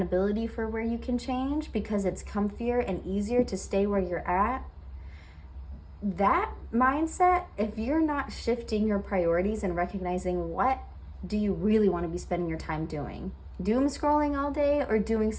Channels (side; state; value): both; identical; correlation 1.00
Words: for where you can change because it's comfier and easier to stay where you're at? That mindset, if you're not shifting your priorities and recognizing what do you really want to be spending your time doing, doom scrolling all day or doing